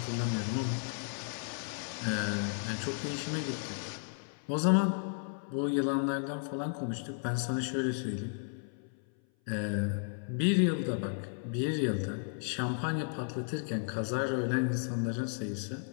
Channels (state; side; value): silent; right; 55 dB below the other